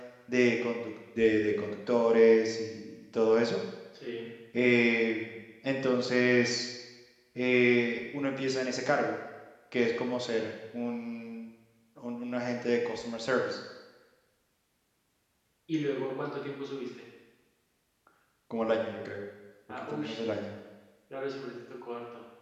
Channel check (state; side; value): identical; both; correlation 1.00